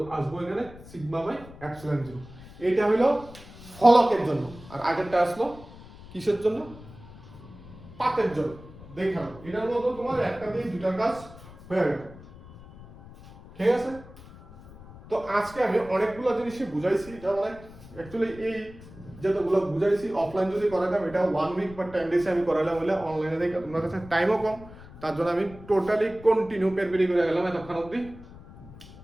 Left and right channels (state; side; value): noise; left; rumble, 18 dB below the sound